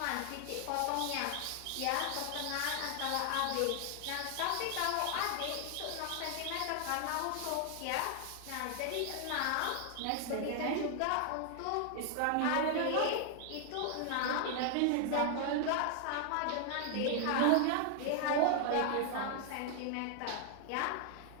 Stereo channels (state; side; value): different; both; correlation 0.00